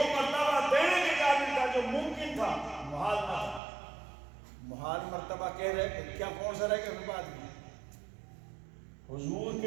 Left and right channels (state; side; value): drops out; left; at 3.6 s